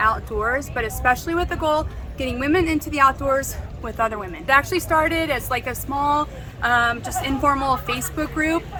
but especially with the goal getting women into the outdoors with other women. It actually started as like a small, just informal Facebook group,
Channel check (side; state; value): both; identical; correlation 1.00